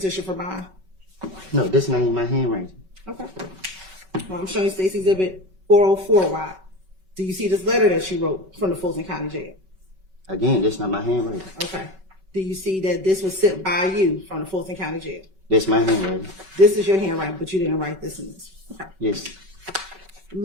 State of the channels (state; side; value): late; left; 5.3 ms